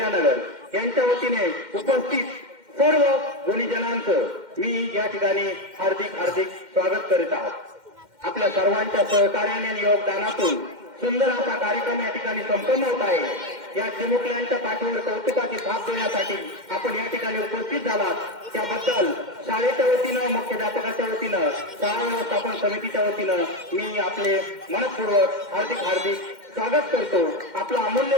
यांच्या वतीने उपस्थित सर्व गुणीजनांचं मी या ठिकाणी हार्दिक हार्दिक स्वागत करीत आहोत. आपल्या सर्वांच्या सहकार्याने आणि योगदानातून सुंदर असा कार्यक्रम या ठिकाणी संपन्न होत आहे. या चिमुकल्यांच्या पाठीवर कौतुकाची थाप देण्यासाठी आपण या ठिकाणी उपस्थित झालात त्याबद्दल शाळेच्या वतीनं, मुख्याध्यापकाच्या वतीनं, शाळा व्यवस्थापन समितीच्या वतीनं मी आपले मनपूर्वक हार्दिक हार्दिक स्वागत करतो. आपला अमूल्य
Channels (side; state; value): left; late; 2.1 ms